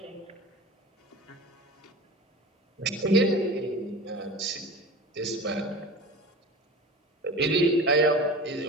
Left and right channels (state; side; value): normal; both; correlation 0.34